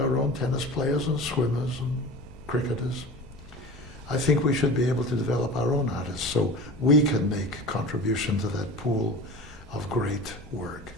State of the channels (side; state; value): left; noise; rumble, 19 dB below the sound